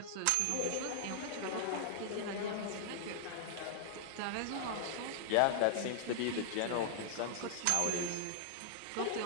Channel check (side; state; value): both; different; correlation -0.01